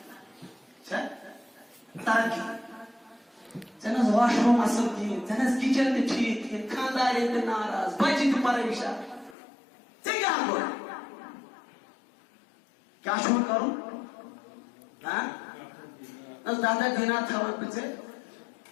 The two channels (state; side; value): drops out; right; at 9.3 s